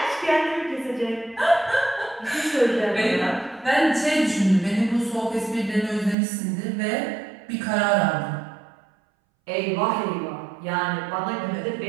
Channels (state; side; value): drops out; left; at 6.2 s